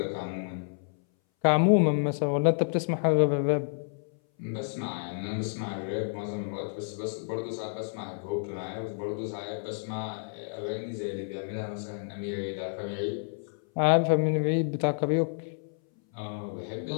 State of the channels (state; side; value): silent; right; 58 dB below the other